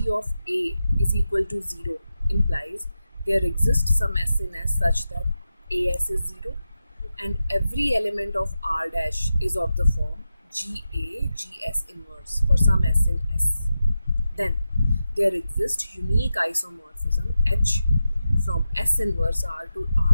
of A is equal to 0 implies there exists some S in S such that AS is 0 and every element of R dash is of the form GA, GS inverse for some S in S. Then there exists unique isomorphism H from S inverse R to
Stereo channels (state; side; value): inverted; both; correlation -0.90